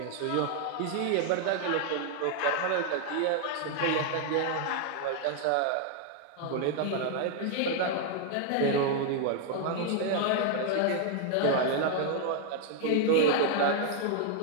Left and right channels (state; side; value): different; both; correlation 0.00